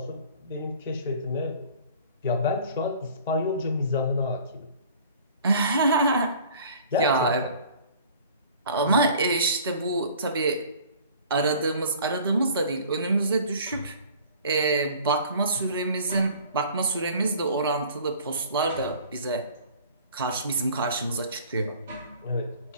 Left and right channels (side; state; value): both; inverted; correlation -0.48